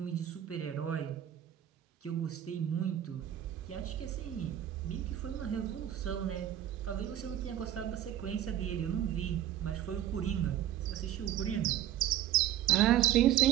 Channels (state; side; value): quieter; left; 11.5 dB